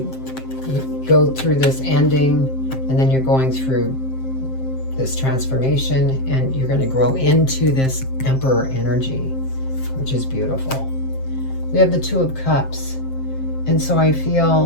go through this ending, and then you're going through this transformation, and you're going to grow into this Emperor energy, which is beautiful. We have the 2 of Cups. And so I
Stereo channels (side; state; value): right; late; 7.6 ms